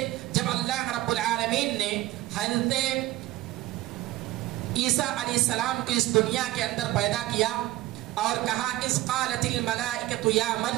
جب اللہ رب العالمین نے حضرت عیسیٰ علیہ السلام کو اس دنیا کے اندر پیدا کیا اور کہا اذ قالت الملائکۃ یا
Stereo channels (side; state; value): left; quieter; 16.5 dB